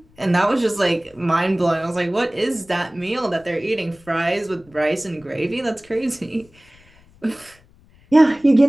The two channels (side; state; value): left; noise; rumble, 29 dB below the sound